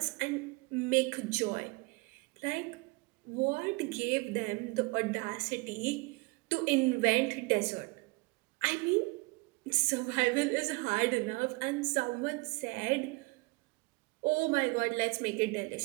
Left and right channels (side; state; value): left; quieter; 26.2 dB